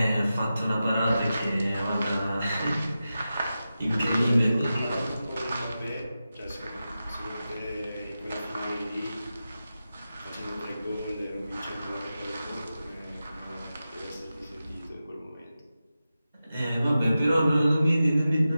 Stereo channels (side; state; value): both; inverted; correlation -0.92